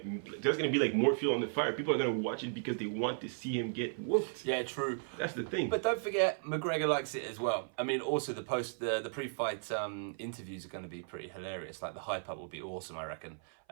be like more fuel on the fire. People are gonna watch it because they want to see him get whooped. Yeah, true. That's the thing. But don't forget, McGregor likes it as well. I mean, also the pre-fight interviews are going to be pretty hilarious. Like the hype up will be awesome, I reckon.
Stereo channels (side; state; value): left; silent; 54 dB below the other